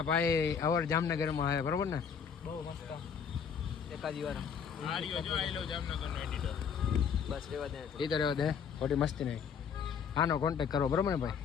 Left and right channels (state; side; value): quieter; right; 6.9 dB